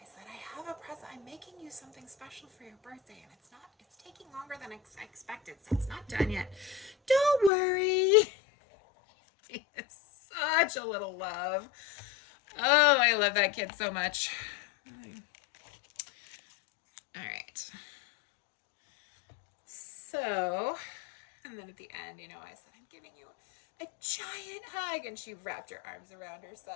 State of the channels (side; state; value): right; drops out; at 7.5 s